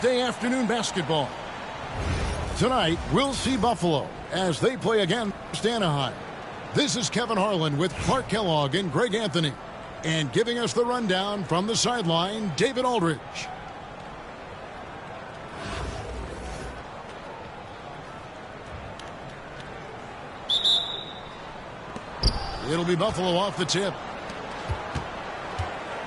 afternoon basketball. Tonight, we'll see Buffalo as they play against Anaheim. This is Kevin Harlan with Clark Kellogg and Greg Anthony. And giving us the rundown from the sideline, David Aldridge. It'll be Buffalo off the tip.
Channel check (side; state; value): both; identical; correlation 1.00